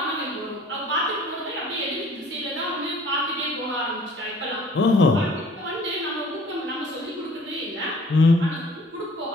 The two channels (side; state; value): both; normal; correlation 0.53